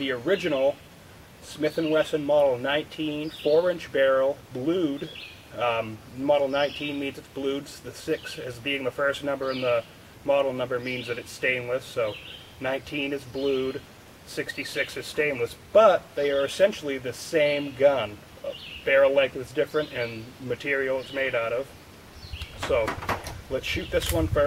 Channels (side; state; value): both; identical; correlation 1.00